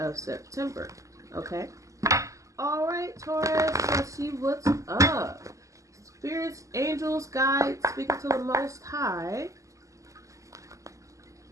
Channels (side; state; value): left; late; 0.16 ms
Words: September. Okay? Alright, Taurus, let's see what's up. Spirits, angels, guides, speaking to the Most High.